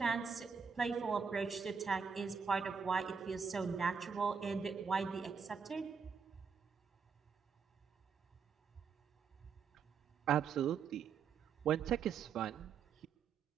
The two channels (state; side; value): quieter; left; 6.1 dB